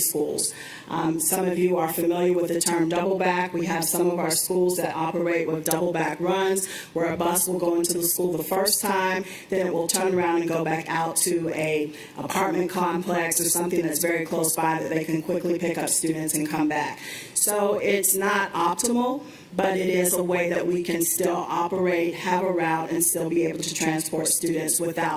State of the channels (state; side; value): identical; both; correlation 1.00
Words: Some of you are familiar with the term double back. We have some of our schools that operate with double back runs, where a bus will go into the school the first time, then it will turn around and go back out to a apartment complex or something that's very close by that they can quickly pick up students and come back. So it's not optimal, but it is a way that we can still operate, have a route, and still be able to transport students